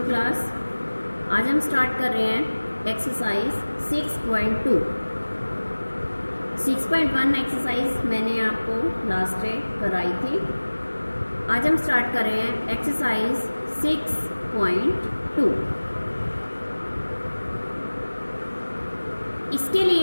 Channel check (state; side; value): inverted; both; correlation -1.00